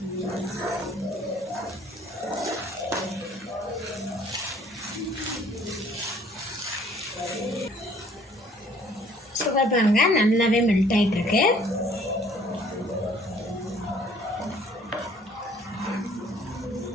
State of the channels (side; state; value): both; normal; correlation 0.57